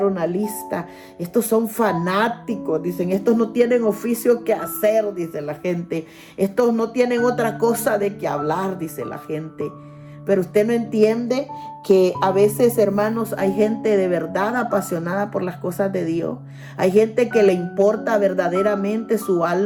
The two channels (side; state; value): both; identical; correlation 1.00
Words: una lista, estos son fanáticos, dicen, estos no tienen oficio que hacer, dice la gente, estos no tienen otra cosa de que hablar, dice la gente. Pero usted no entiende que a veces, hermanos, hay gente de verdad apasionada por las cosas de Dios. Hay gente que le importa verdaderamente su